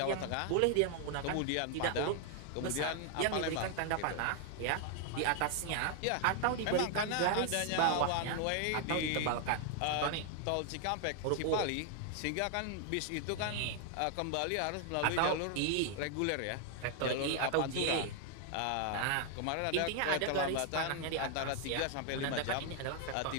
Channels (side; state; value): both; different; correlation 0.00